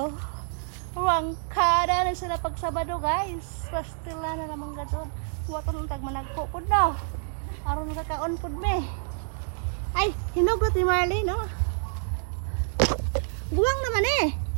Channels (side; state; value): left; silent; digital silence